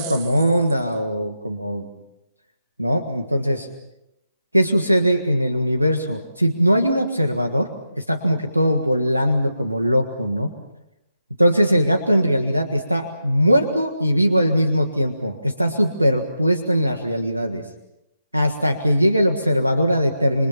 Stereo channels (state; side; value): inverted; both; correlation -0.87